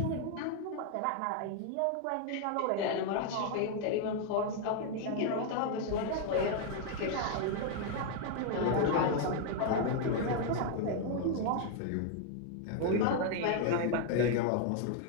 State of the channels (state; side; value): different; both; correlation 0.00